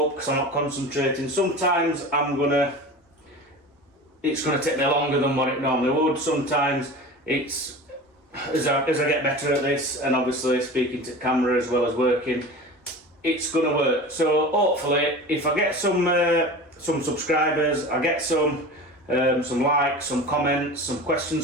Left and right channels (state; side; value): normal; both; correlation 0.34